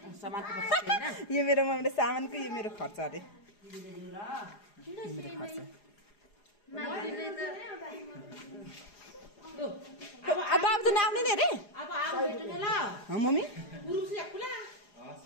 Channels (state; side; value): late; right; 4.9 ms